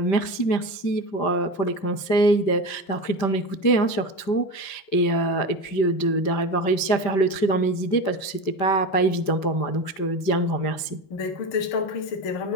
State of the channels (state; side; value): late; right; 5.1 ms